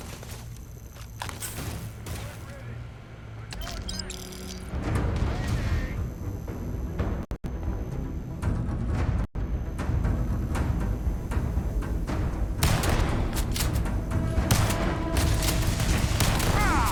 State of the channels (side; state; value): both; identical; correlation 1.00